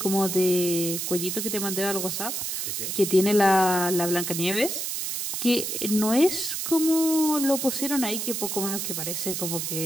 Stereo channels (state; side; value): noise; right; hiss, 3 dB below the sound